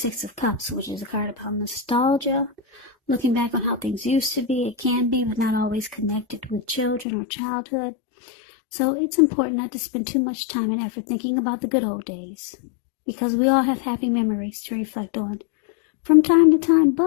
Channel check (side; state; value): right; drops out; at 7.1 s